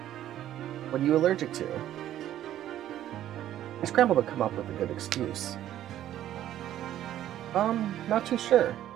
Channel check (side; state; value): left; quieter; 12.2 dB